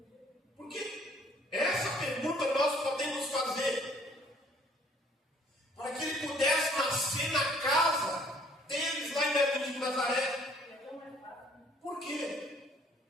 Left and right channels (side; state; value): both; normal; correlation 0.59